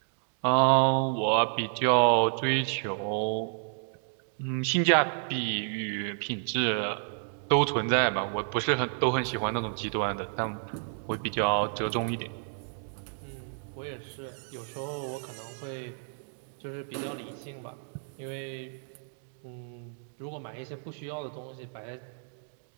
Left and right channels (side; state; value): left; silent; 58 dB below the other